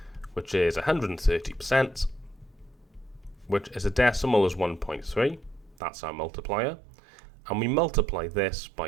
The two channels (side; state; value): left; drops out; at 5.8 s